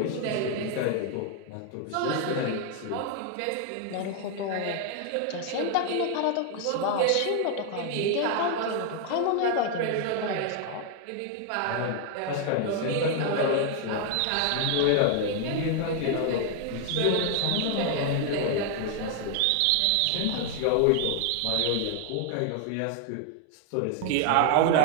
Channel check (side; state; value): both; different; correlation 0.00